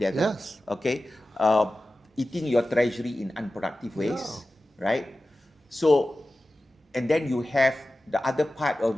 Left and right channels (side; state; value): both; normal; correlation 0.95